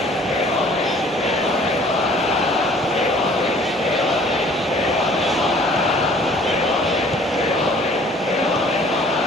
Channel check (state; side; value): normal; both; correlation 0.54